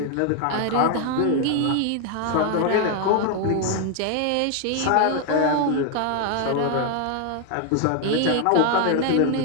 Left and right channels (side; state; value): both; different; correlation 0.00